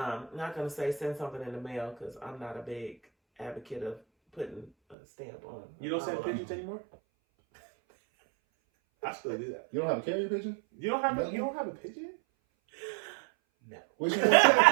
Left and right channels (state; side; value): drops out; left; at 5.0 s